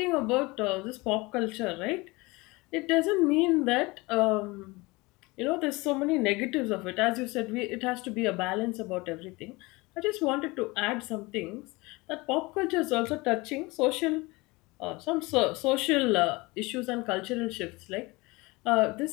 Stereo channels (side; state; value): right; quieter; 23.7 dB